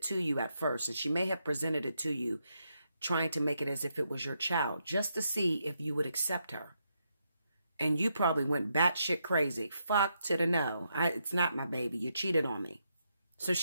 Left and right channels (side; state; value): both; inverted; correlation -0.81